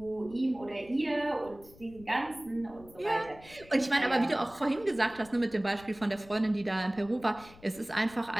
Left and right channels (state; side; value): noise; left; rumble, 22 dB below the sound